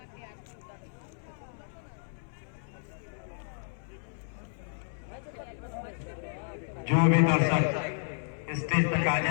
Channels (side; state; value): right; silent; 56 dB below the other